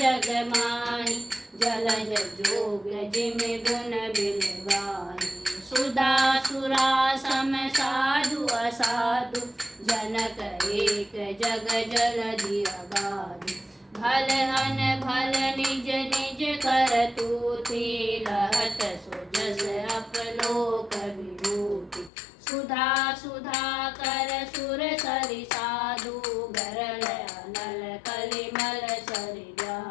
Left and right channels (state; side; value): drops out; right; at 22.1 s